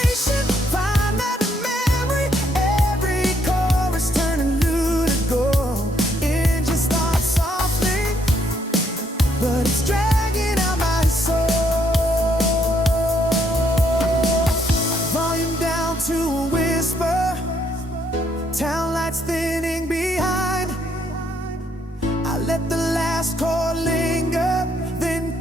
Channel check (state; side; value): normal; both; correlation 0.71